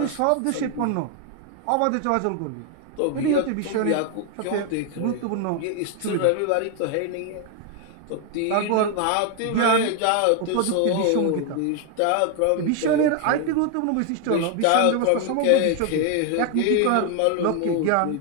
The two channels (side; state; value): both; different; correlation 0.00